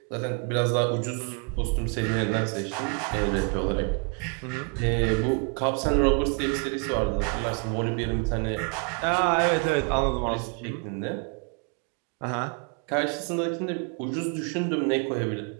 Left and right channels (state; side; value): quieter; left; 36.7 dB